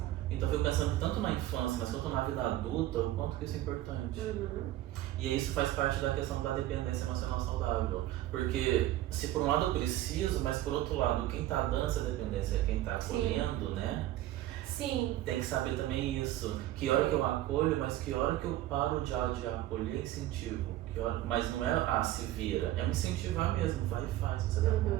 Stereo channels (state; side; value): quieter; left; 14.7 dB